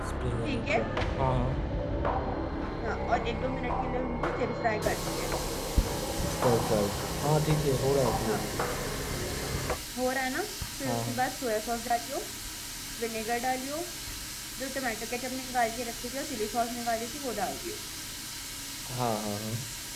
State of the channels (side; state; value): both; identical; correlation 1.00